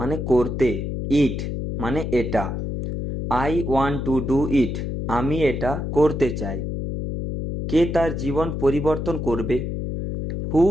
করতে, ইট মানে এটা। I want to do it, আমি এটা করতে চাই। কে তার জীবন পরিবর্তন করবে? Who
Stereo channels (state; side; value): noise; left; hum, 4 dB below the sound